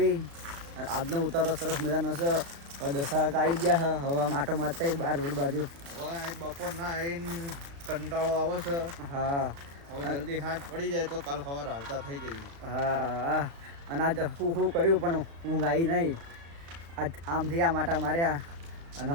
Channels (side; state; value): left; late; 35 ms